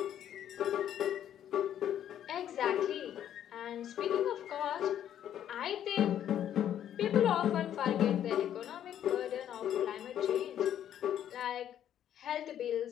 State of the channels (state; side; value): quieter; right; 10.4 dB